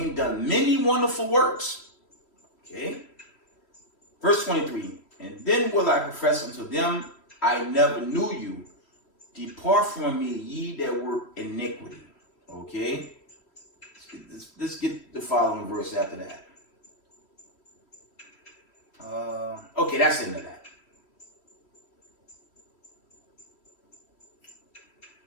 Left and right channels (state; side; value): late; right; 3.1 ms